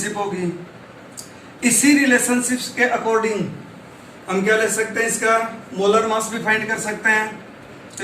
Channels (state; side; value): identical; both; correlation 1.00